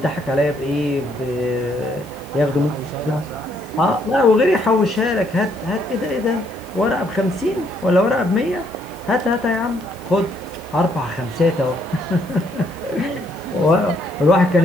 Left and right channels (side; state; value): left; noise; hiss, 24 dB below the sound